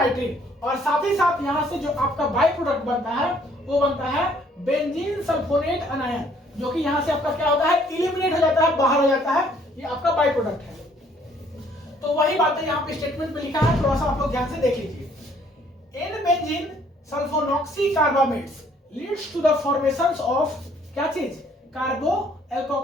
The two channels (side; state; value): both; normal; correlation 0.62